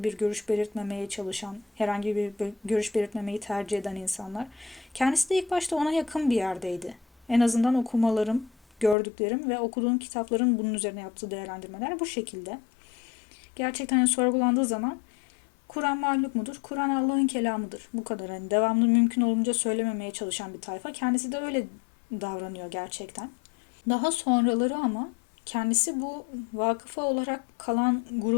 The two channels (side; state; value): right; drops out; at 9.0 s